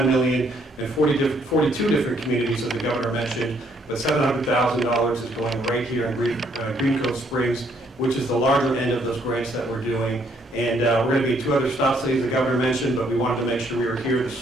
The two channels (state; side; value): normal; both; correlation 0.68